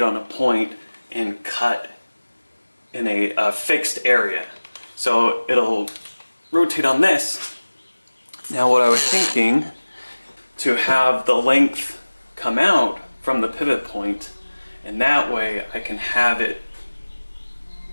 on a point and cut in a fixed area. So it'll rotate on this. Now what I was thinking, to have the length come out from the pivot point, and that way I can have it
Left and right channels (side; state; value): both; inverted; correlation -1.00